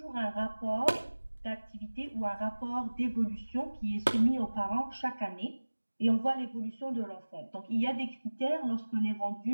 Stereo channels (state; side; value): inverted; both; correlation -1.00